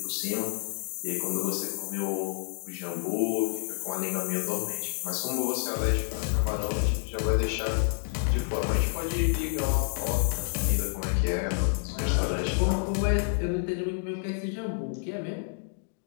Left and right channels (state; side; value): silent; right; digital silence